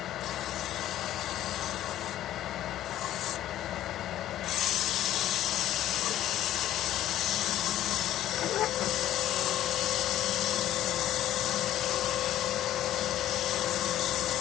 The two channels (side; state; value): right; quieter; 12.8 dB